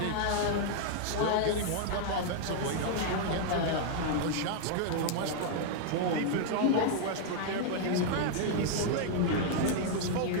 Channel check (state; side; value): different; both; correlation -0.01